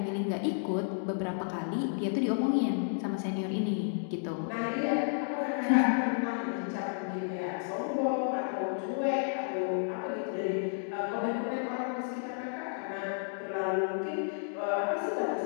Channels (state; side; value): silent; right; digital silence